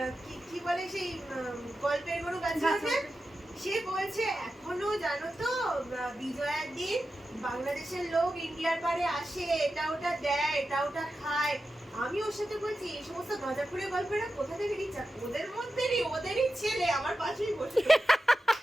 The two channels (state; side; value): normal; both; correlation 0.91